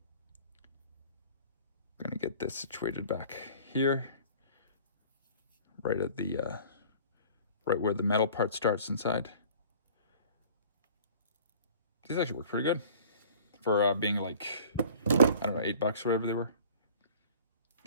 going to get this situated back here, right at the right where the metal part starts inside. These actually work pretty good for being like, I don't know, $8 or whatever they were.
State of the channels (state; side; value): inverted; both; correlation -0.48